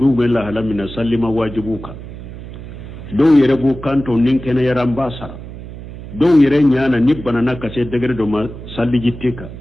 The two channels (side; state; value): right; noise; hum, 12 dB below the sound